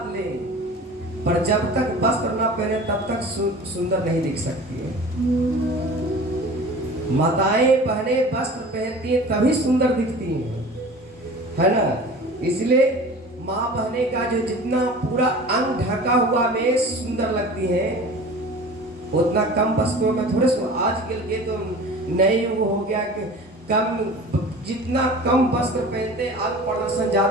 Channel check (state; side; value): normal; both; correlation 0.40